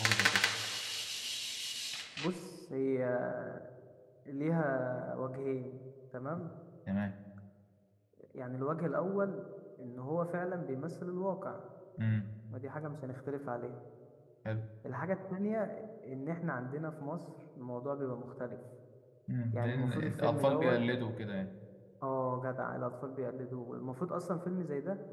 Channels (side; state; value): both; identical; correlation 1.00